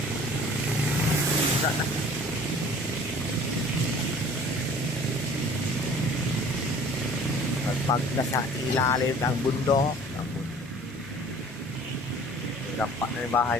Na. Pag nasa ilalim ng bundok, dampak na yung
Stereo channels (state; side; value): normal; both; correlation 0.49